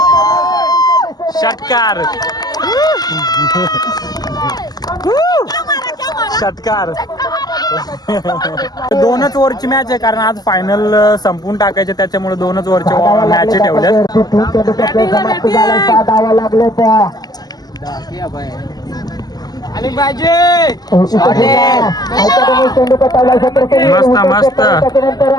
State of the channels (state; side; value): late; right; 0.19 ms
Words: षटकार षटकार 2च ओव्हरची मॅच आहे कारण आज फायनल संपून टाकायचे त्याच्यामुळे 2च ओव्हरच्या मॅच ठेवल्यात मस्त मस्त